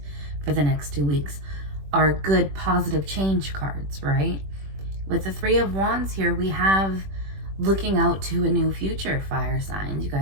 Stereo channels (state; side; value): late; left; 21 ms